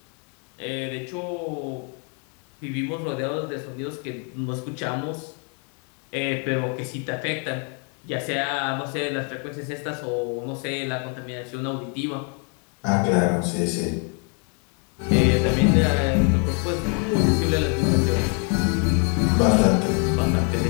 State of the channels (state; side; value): quieter; right; 38.9 dB